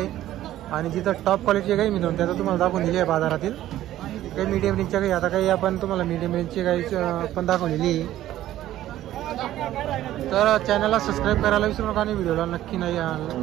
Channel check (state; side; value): quieter; left; 13.6 dB